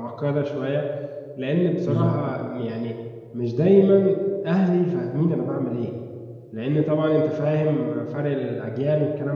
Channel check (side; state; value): both; identical; correlation 1.00